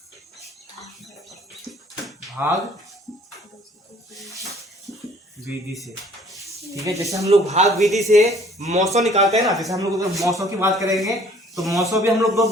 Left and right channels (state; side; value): normal; both; correlation 0.56